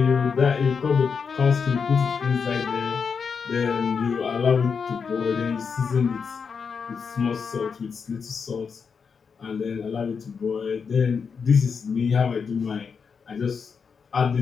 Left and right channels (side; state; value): right; quieter; 5.9 dB